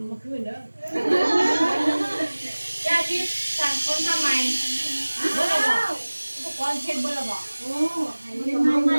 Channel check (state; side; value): inverted; both; correlation -1.00